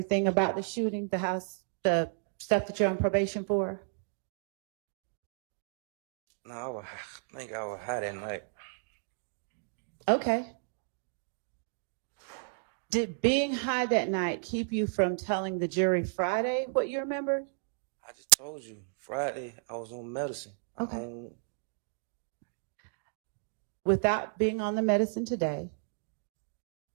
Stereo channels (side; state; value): left; silent; digital silence